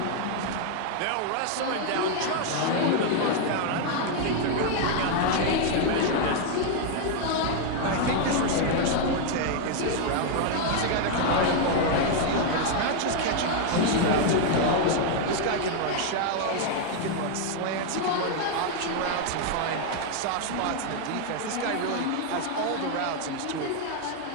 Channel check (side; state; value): both; different; correlation 0.00